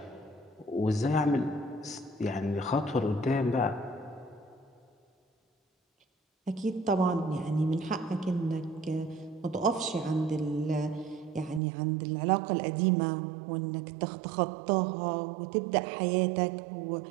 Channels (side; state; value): left; drops out; at 11.6 s